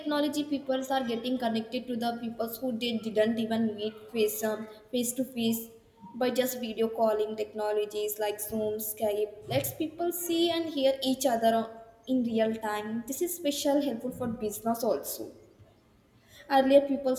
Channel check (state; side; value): identical; both; correlation 1.00